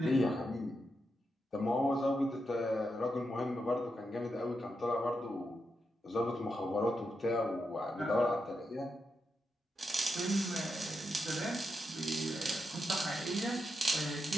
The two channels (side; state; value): both; normal; correlation 0.85